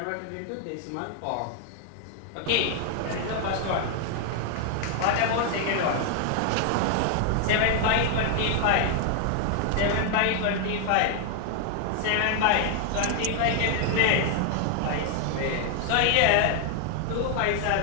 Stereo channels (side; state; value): both; different; correlation 0.00